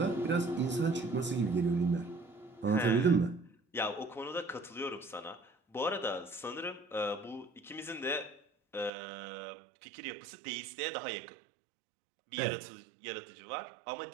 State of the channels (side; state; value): left; drops out; at 8.9 s